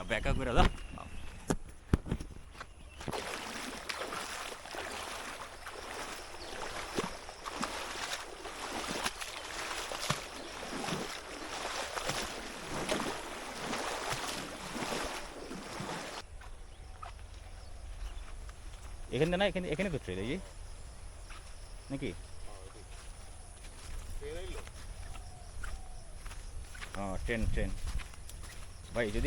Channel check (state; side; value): identical; both; correlation 1.00